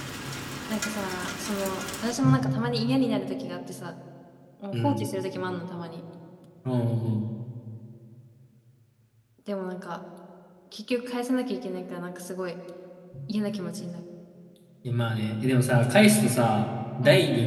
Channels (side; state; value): both; identical; correlation 1.00